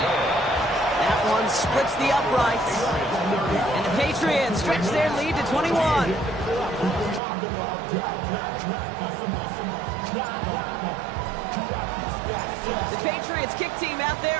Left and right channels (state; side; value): drops out; left; at 7.2 s